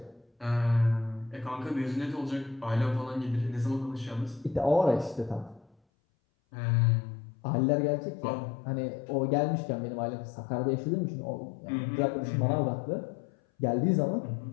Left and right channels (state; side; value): drops out; right; at 5.7 s